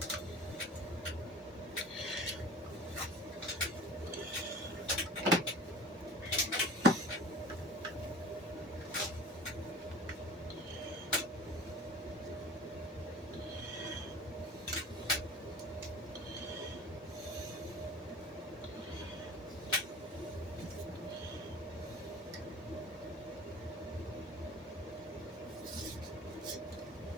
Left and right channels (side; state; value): both; normal; correlation 0.40